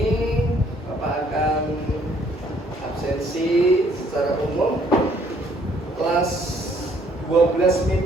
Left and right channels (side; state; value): both; normal; correlation 0.64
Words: Bapak akan absensi secara umum. Kelas 12